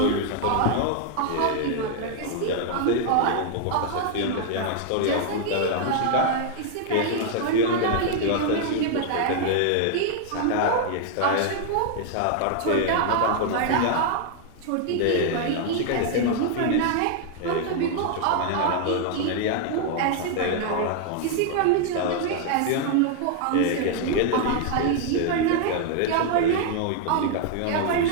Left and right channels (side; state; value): both; different; correlation 0.00